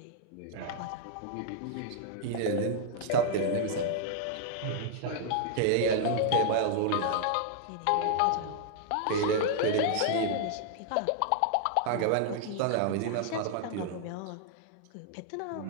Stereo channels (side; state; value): both; different; correlation -0.01